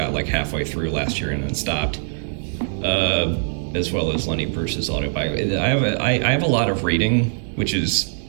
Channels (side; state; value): left; silent; digital silence